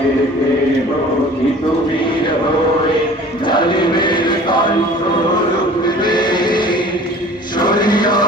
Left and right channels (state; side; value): normal; both; correlation 0.45